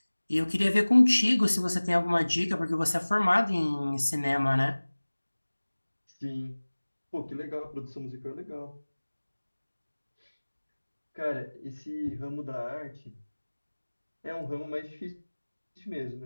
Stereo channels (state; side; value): inverted; both; correlation -1.00